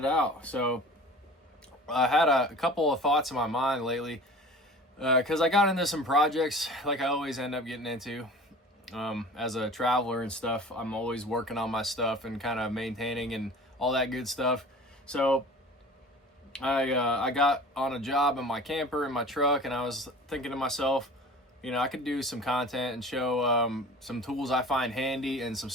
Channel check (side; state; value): both; normal; correlation 0.41